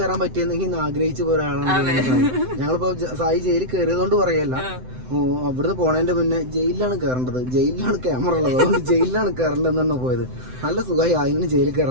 പറ്റിയെന്നെങ്കിൽ ആഗ്രഹിച്ചു പോയ ഒരാളാണ് ഞങ്ങളിപ്പോ. സായി ജയിലിൽ കയറിയതുകൊണ്ട് പറയല്ല, അവിടുന്ന് പോണേന്റെ മുന്നേ ജയിലിലാണ് കയറേണ്ടത്, ജയിലിലാണ് ക്യാമറ ഉള്ളത്, അതുകൊണ്ട് ജയിലിലാണ് കയറേണ്ടതെന്നാണ് പോയത്. നല്ല സുഖമായി അതിന് ജയിലിൽ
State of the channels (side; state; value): left; late; 7.9 ms